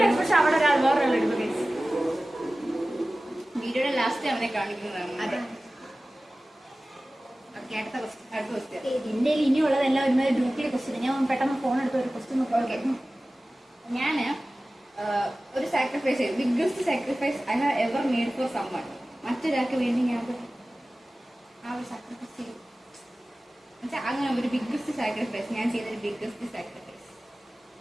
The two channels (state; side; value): normal; both; correlation 0.97